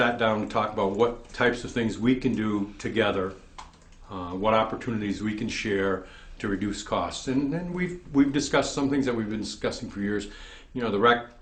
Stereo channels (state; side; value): identical; both; correlation 1.00